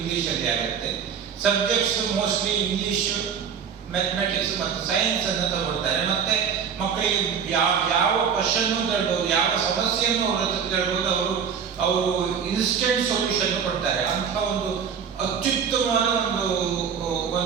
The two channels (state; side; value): quieter; left; 7.1 dB